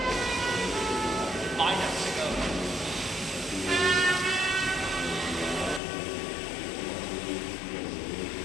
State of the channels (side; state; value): right; drops out; at 5.8 s